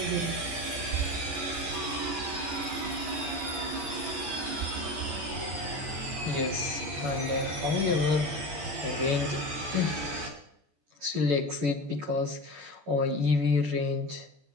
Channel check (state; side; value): late; left; 14 ms